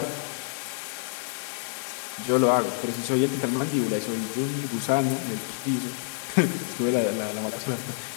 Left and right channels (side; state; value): right; silent; digital silence